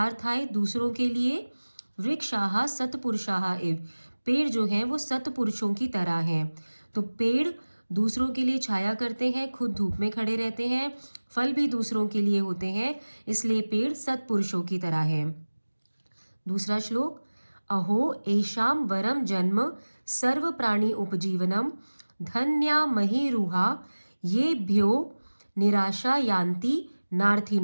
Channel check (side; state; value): both; inverted; correlation -1.00